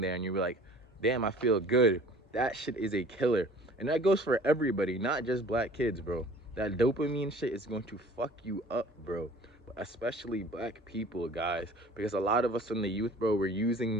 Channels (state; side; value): normal; both; correlation 0.48